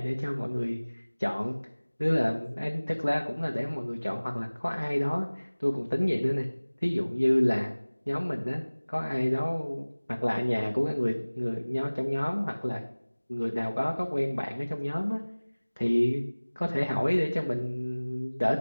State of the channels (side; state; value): both; inverted; correlation -1.00